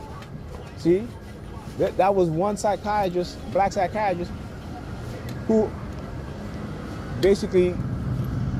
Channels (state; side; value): identical; both; correlation 1.00